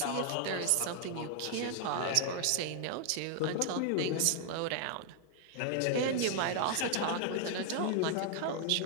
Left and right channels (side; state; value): both; different; correlation 0.00